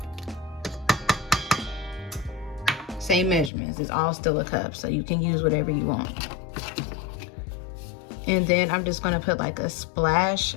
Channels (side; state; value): right; drops out; at 3.5 s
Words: measurements. It's all still a cup, so you can use whatever you want. And then I'm just going to put like a splash